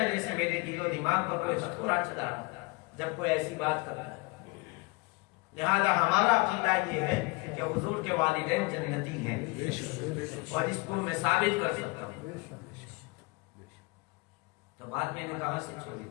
جیسے میرے دل و دماغ پر کوئی ہتھوڑا چلا رہا ہے جب کوئی ایسی بات کرتا ہے۔ لہذا ہمارا عقیدہ یہ ہے کہ حضور کے والدین جنتی ہیں، اور اس کو میں ثابت کر سکتا ہوں۔ تو بات میں نے کہاں سے چھوڑی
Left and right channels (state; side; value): quieter; right; 27.4 dB